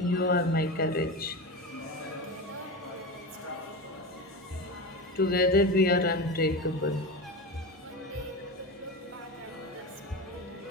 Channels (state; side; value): normal; both; correlation 0.23